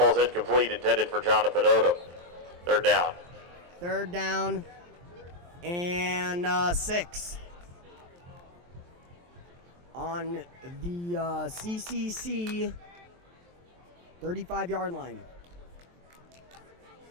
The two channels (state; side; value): late; left; 23 ms